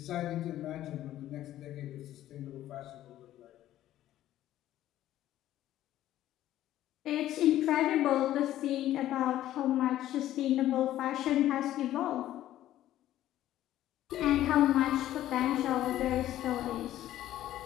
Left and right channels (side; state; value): right; quieter; 13.3 dB